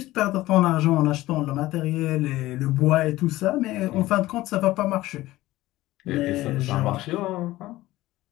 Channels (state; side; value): quieter; right; 17.1 dB